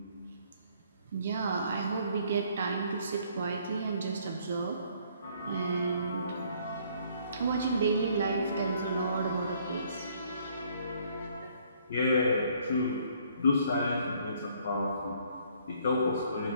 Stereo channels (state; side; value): inverted; both; correlation -0.63